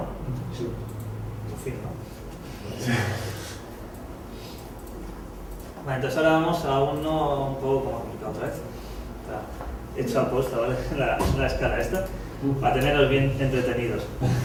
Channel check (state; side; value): identical; both; correlation 1.00